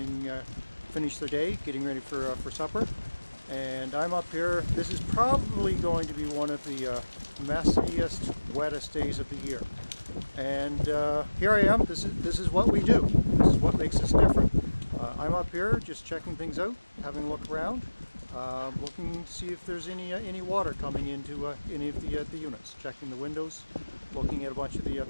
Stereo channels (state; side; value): inverted; both; correlation -1.00